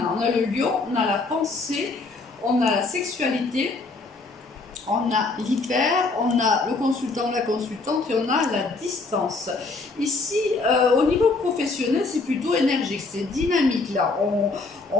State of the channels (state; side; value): quieter; right; 3.7 dB